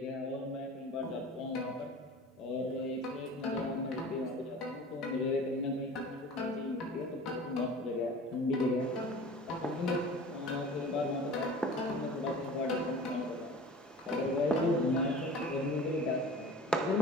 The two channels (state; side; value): normal; both; correlation 0.40